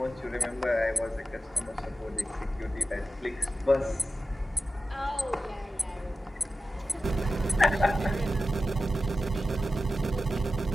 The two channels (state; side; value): normal; both; correlation 0.93